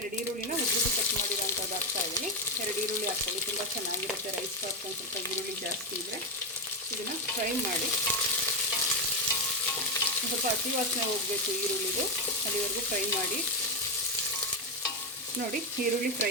ಈರುಳ್ಳಿನ ಉದ್ದುದ್ದು ಕಟ್ ಮಾಡಿರೋಂಥದ್ದು ಹಾಕ್ತಾಯಿದ್ದೀನಿ. 2 ಈರುಳ್ಳಿ ಹಾಕ್ಕೊಳ್ಳಿ, ತುಂಬ ಚೆನ್ನಾಗಿರುತ್ತೆ ರೈಸ್ ಬಾತ್. ಒಂದು ಸ್ವಲ್ಪ ಈರುಳ್ಳಿ ಜಾಸ್ತಿ ಇದ್ದರೆ ಇದನ್ನು ಫ್ರೈ ಮಾಡಿ. ಸ್ವಲ್ಪ ಹಸಿ ವಾಸನೆ ಹೋಗಬೇಕು ಈರುಳ್ಳಿದು, ಅಲ್ಲಿವರೆಗೂ ಫ್ರೈ ಮಾಡಿ. ನೋಡಿ, ಈರುಳ್ಳಿ ಫ್ರೈ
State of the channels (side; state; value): both; normal; correlation 0.09